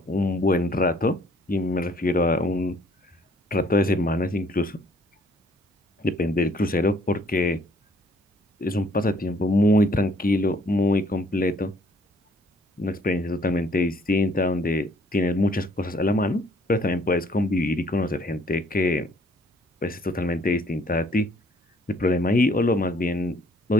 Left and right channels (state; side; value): normal; both; correlation 0.62